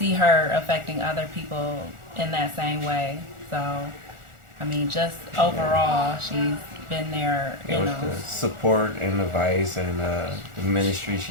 her affecting other people in that same way. So, I mean, just overall, she's been there, you With know. the support and advice and the ministry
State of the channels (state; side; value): late; left; 1.4 ms